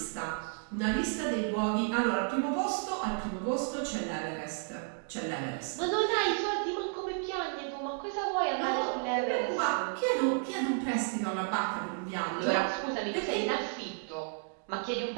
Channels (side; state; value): left; silent; 56 dB below the other